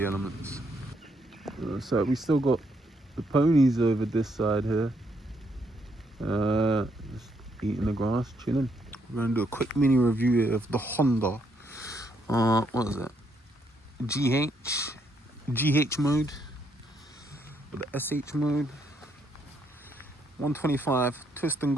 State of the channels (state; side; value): normal; both; correlation 0.74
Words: elements. So we still got the ponies over this side here, just eating the grass, chilling. We're gonna do a quick mini review here of the Honda. What is that? GH mode, or the SH mode. 125 twist and